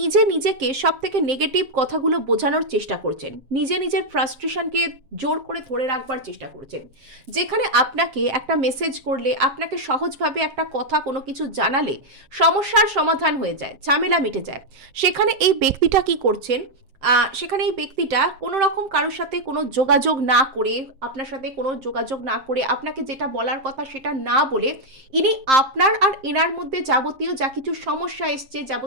নিজেকে সব থেকে নেগেটিভ কথাগুলো বোঝানোর চেষ্টা করছেন, নিজে নিজের ফ্রাস্ট্রেশনকে জোর করে ধরে রাখবার চেষ্টা করছেন। যেখানে আপনাকে একটা মেসেজ করলে, আপনাকে সহজভাবে একটা কথা কোনো কিছু জানালে সমস্যার সমাধান হয়ে যায়, ঝামেলা মিটে যায়, সেখানে এই ব্যক্তিটা কি করছেন, সেখানে এই ব্যক্তিটা কোনো রকম কারোর সাথে কোনো যোগাযোগ না করে, আপনার সাথে কোনো যোগাযোগ না করে, আপনাকে যেটা বলার কথা সেটা না বলে, ইনি আপনার আর এনার মধ্যে যাবতীয় যা কিছু সমস্যা এসছে,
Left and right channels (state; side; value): late; left; 7.6 ms